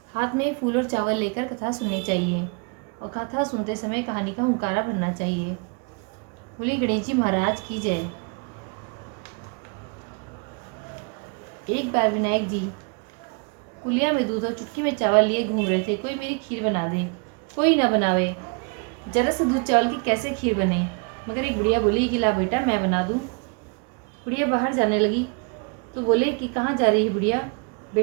हाथ में फूल और चावल लेकर कथा सुननी चाहिए और कथा सुनते समय कहानी का हुंकारा भरना चाहिए। बोली गणेश जी महाराज की जय। एक बार विनायक जी कुलिया में दूध और चुटकी में चावल लिए घूम रहे थे। कोई मेरी खीर बना दे, कोई ना बनावे, जरा से दूध चावल की कैसे खीर बने। मगर एक बुढ़िया बोली कि ला बेटा मैं बना दूं। बुढ़िया बाहर जाने लगी तो बोले कि कहाँ जा रही है बुढ़िया।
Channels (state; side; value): quieter; left; 34.8 dB